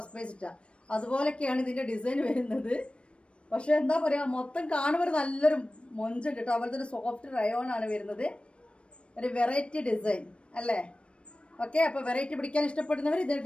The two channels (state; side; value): late; right; 0.059 ms